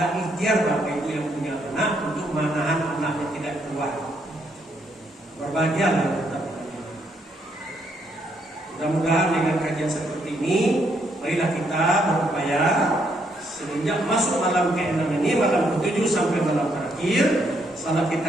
ikhtiar bapak ibu yang punya anak untuk menahan anaknya tidak keluar. Berbahagialah kita. Mudah-mudahan dengan kajian seperti ini, marilah kita berupaya semenjak masuk malam ke-6 ini, malam ke-7 sampai malam terakhir, salat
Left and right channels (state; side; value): normal; both; correlation 0.74